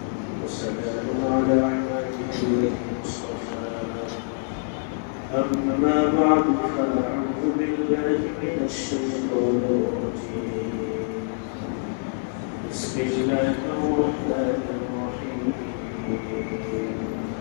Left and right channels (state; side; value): silent; right; 61 dB below the other